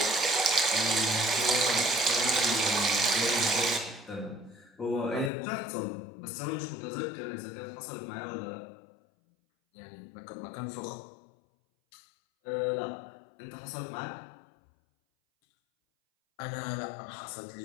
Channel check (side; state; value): right; drops out; at 5.3 s